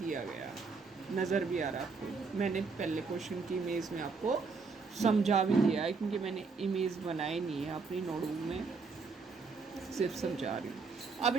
गया, नज़र भी आ रहा है आपको। मैंने पहले क्वेश्चन की इमेज में आपको समझा भी दिया है, क्योंकि मैंने इमेज बनाई नहीं है अपनी नोटबुक में, सिर्फ समझा रही हूँ। अब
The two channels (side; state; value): left; quieter; 4.6 dB